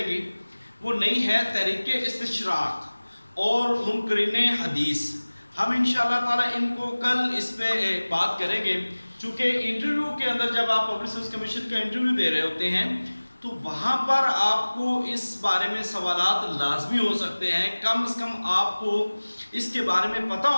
گی وہ نہیں ہے تحریک استشراق اور منکرین حدیث. ہم انشاءاللہ تعالی ان کو کل اس پہ بات کریں گے، چونکہ انٹرویو کے اندر جب آپ پبلک سروس کمیشن کا انٹرویو دے رہے ہوتے ہیں تو وہاں پر آپ کو اس بارے میں سوالات لازمی ہو سکتے ہیں. کم از کم آپ کو اس کے بارے میں پتہ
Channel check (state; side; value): inverted; both; correlation -1.00